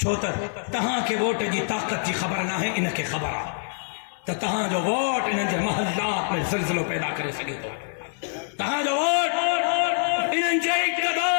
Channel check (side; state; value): right; silent; digital silence